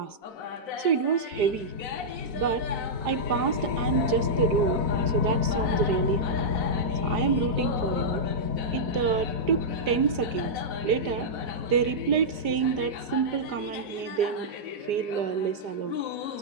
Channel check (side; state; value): left; late; 4.9 ms